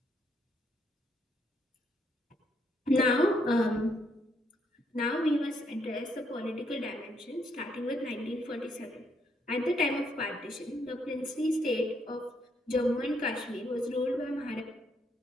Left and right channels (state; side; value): normal; both; correlation 0.73